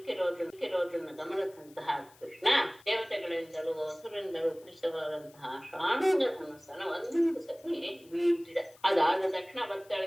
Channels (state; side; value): noise; left; hiss, 27 dB below the sound